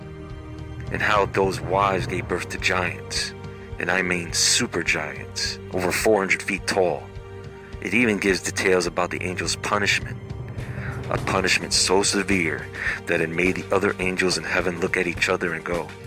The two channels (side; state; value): both; identical; correlation 1.00